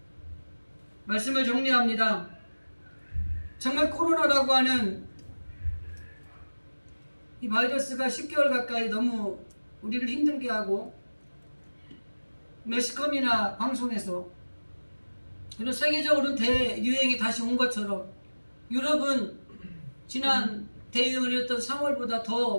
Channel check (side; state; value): both; inverted; correlation -1.00